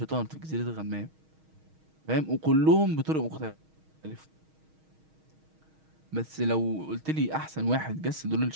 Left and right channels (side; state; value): left; late; 6.4 ms